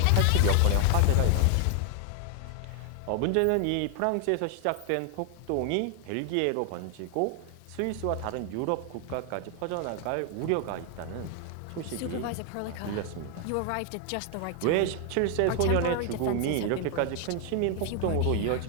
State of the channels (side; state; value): both; different; correlation 0.00